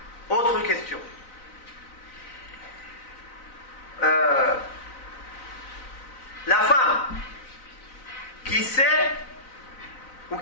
Autre question. La femme qui sait ou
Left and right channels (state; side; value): late; right; 3.9 ms